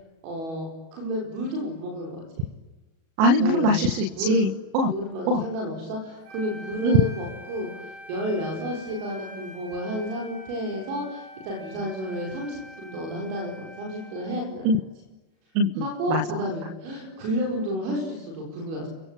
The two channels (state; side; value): late; left; 37 ms